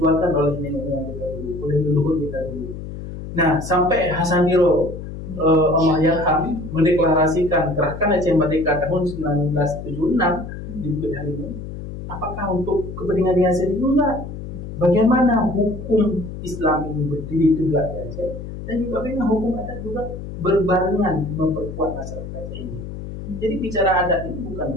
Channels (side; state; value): left; noise; hum, 9 dB below the sound